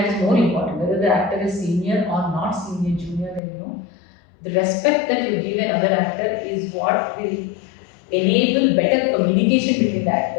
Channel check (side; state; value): right; drops out; at 3.4 s